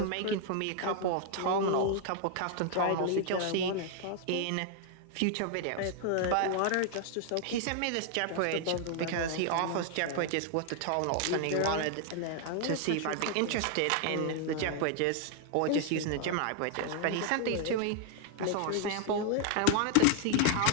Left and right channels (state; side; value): different; both; correlation 0.00